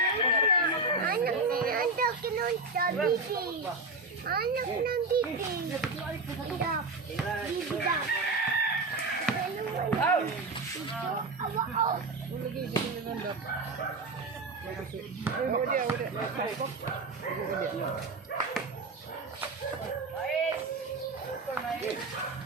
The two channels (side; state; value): left; quieter; 3.4 dB